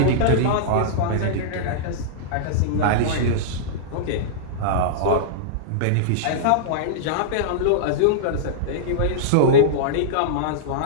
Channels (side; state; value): both; different; correlation -0.02